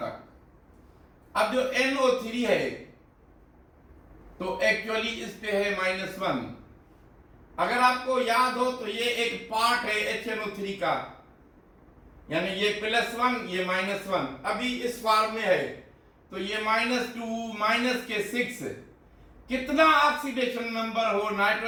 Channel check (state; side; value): identical; both; correlation 1.00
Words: अब जो NO3 है तो एक्चुअली इस पे है -1। अगर आपको याद हो तो ये एक पार्ट है HNO3 का, यानी ये +1 ये -1 अभी इस फॉर्म में है, तो ये -2 के 6 कितना ऑक्सीडेशन नंबर हो